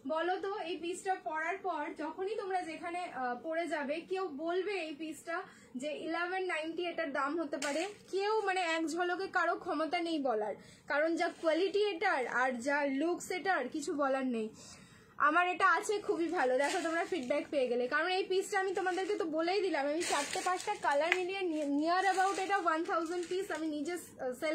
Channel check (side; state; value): both; identical; correlation 1.00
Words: বলো তো এই পিসটা পরার পর যখনই তোমরা যেখানে পরে যাবে, কেউ বলবে এই পিসটা যে 1190 এটার দাম হতে পারে? কেউ মানে এক ঝলকে কারো ক্ষমতা নেই বলার, কারণ যা কোয়ালিটি এটার আর যা লুকস এটার কিছু বলার নেই। আমার এটা আছে খুবই ভালো, দেখো তোমরা ফিডব্যাক পেয়ে গেলে, কারণ এই পিসটা আমি তোমাদেরকে তো বলেই দিলাম, আমি 4-5টা কালার মিলিয়ে নিয়ার অ্যাবাউট এটা 1000 পিস আমি নিজে